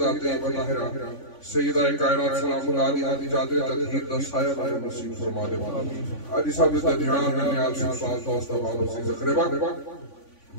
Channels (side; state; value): right; late; 3.5 ms